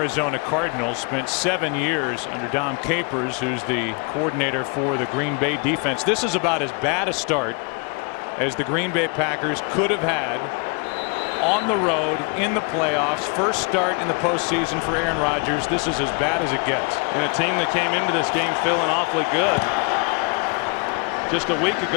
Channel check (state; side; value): quieter; right; 33.8 dB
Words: Cardinals, spent 7 years under Dom Capers, who's the coordinator for the Green Bay defense. This is about as bad a start as the Green Bay Packers could have had on the road in the playoffs. First start in the postseason for Aaron Rodgers. This is as bad as it gets. And a team that came into this game feeling awfully good just a week